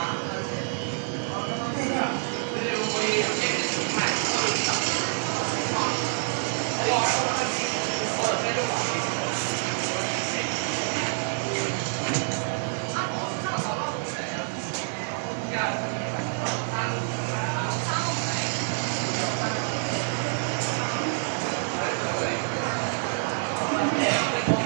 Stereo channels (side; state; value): left; silent; digital silence